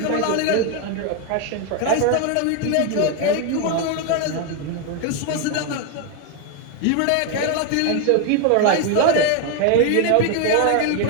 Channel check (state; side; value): different; both; correlation 0.01